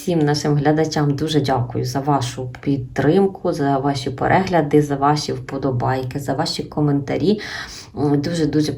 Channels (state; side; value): identical; both; correlation 1.00